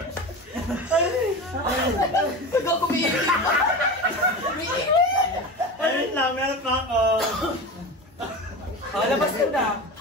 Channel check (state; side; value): normal; both; correlation 0.27